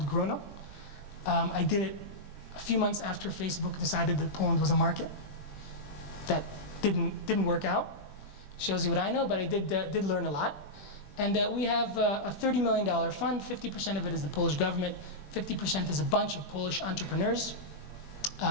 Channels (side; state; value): right; late; 20 ms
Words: Grono. I did it a few months after Facebook decided that Poland was a market. That didn't work out. Shows you what I know, but I did learn a lot. And we have a $30 million fund. 50% of it is the Polish government. 50% is a bunch of Polish entrepreneurs,